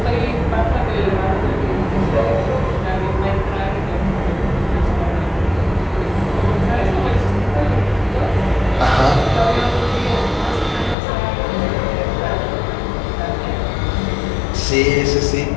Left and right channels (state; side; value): drops out; right; at 11.0 s